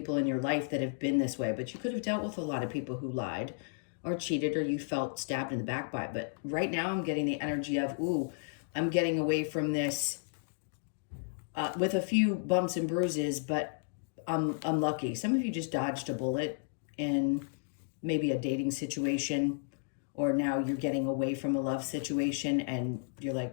in your life that have been this way, but you could have dealt with a lot of people who lied or cheated, or you felt stabbed in the back by it. But right now I'm getting the energy of, ooh, I'm getting away from this with a few bumps and bruises, but I'm lucky. Some of you just dodged a bullet in maybe a dating situation, or now you're getting away from a love situation and you're like,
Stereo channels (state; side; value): silent; right; digital silence